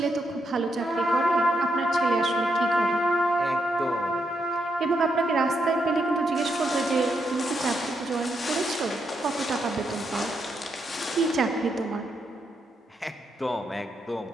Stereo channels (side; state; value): both; normal; correlation 0.80